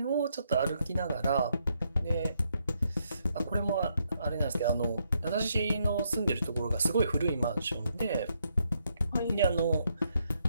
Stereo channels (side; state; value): both; inverted; correlation -0.76